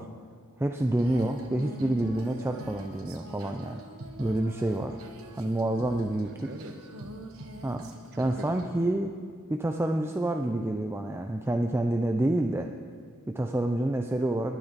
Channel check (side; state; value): both; normal; correlation 0.89